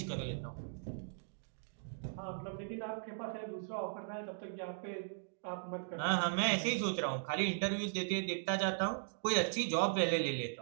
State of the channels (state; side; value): silent; left; digital silence